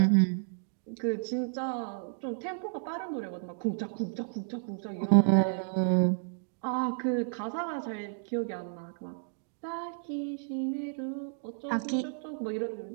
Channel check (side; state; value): left; silent; digital silence